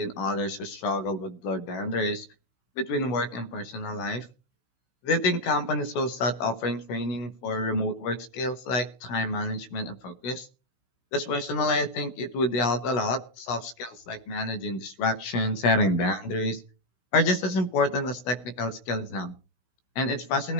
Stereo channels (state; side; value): late; right; 16 ms